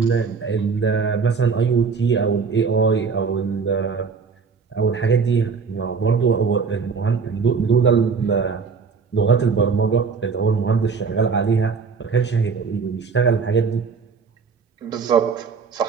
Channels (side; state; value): left; quieter; 5.3 dB